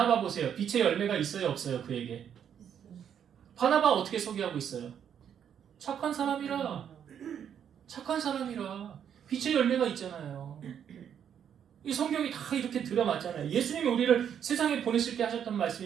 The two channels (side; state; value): left; quieter; 8.7 dB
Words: 보세요. 빛의 열매가 있어요, 없어요? 그에게. 바나바 어떻게 소개하고 있어요? 착한 사람이라. 빛의 열매가 있잖아요. 이 성경이 다 이렇게 들어맞잖아요. 예수님이 우리를 세상에 보내실 때 하셨던